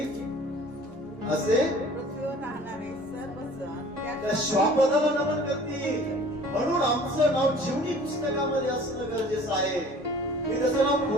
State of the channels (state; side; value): normal; both; correlation 0.48